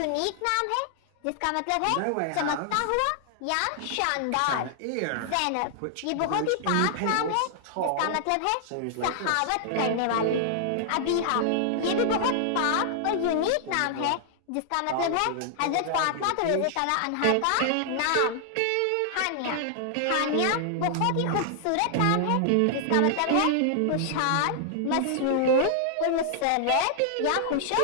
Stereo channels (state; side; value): different; both; correlation -0.01